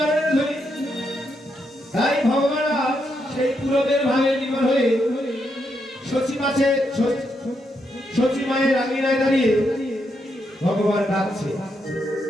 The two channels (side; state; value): both; normal; correlation 0.80